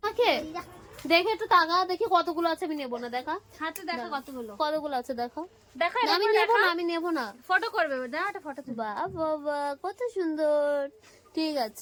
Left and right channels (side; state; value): both; identical; correlation 1.00